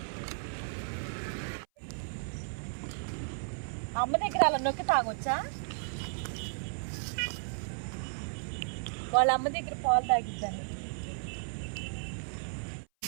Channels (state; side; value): silent; left; 55 dB below the other